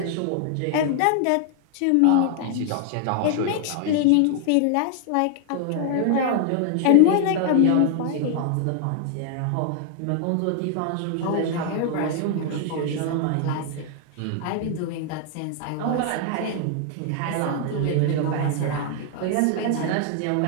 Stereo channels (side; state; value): both; different; correlation 0.00